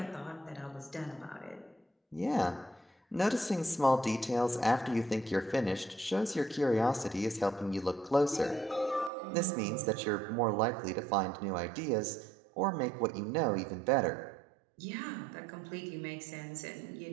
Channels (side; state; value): left; drops out; at 9.1 s